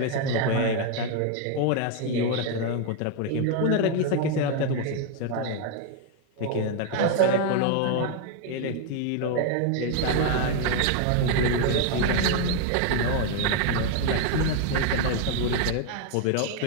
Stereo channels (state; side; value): different; both; correlation 0.01